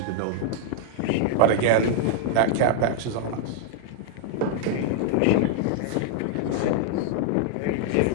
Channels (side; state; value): both; different; correlation -0.01